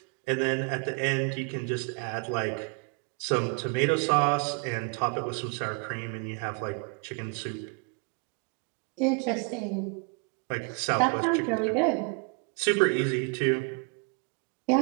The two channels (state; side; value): quieter; left; 36.2 dB